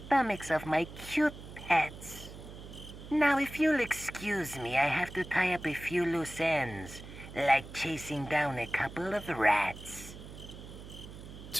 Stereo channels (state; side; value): noise; right; hum, 14 dB below the sound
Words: of my cute pets. Now, if you'll excuse me, I have to tie up a few loose ends, like chasing down a couple of rats.